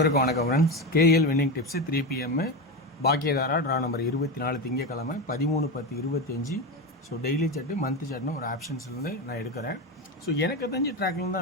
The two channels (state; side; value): normal; both; correlation 0.17